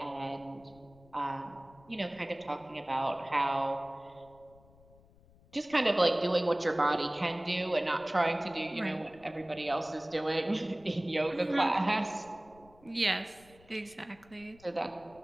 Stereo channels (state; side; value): noise; left; rumble, 27 dB below the sound